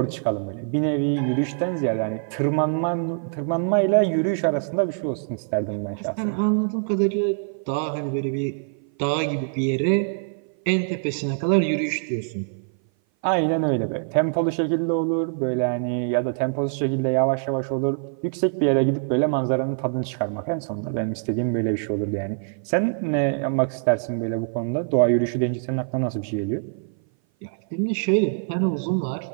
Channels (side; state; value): left; silent; 57 dB below the other